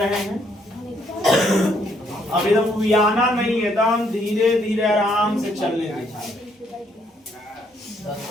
हैं। अब एकदम उबियाना नहीं, एकदम धीरे धीरे आराम से चलने दीजिए।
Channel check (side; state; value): both; normal; correlation 0.70